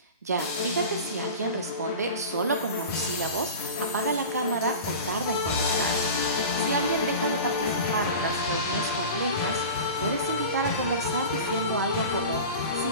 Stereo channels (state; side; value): inverted; both; correlation -0.33